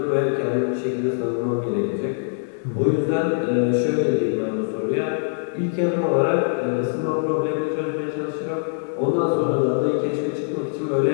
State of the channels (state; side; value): silent; right; digital silence